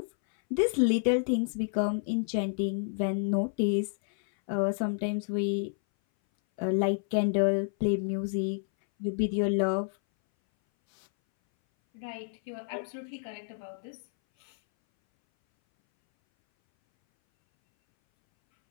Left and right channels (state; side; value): silent; right; 58 dB below the other